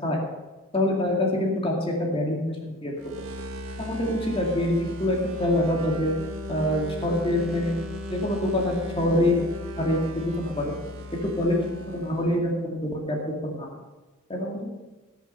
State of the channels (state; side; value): normal; both; correlation 0.43